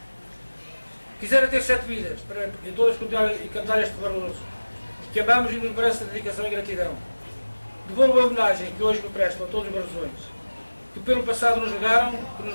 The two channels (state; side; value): inverted; both; correlation -1.00